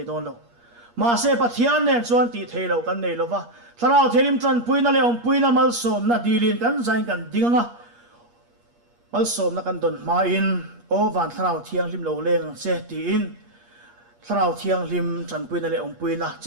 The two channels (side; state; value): left; late; 8.4 ms